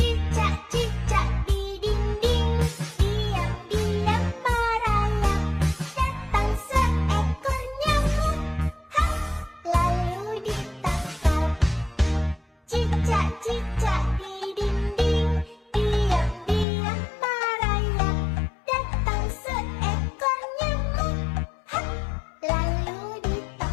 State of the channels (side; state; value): right; drops out; at 16.7 s